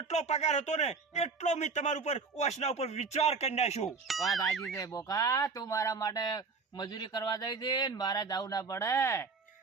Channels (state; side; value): quieter; left; 4.7 dB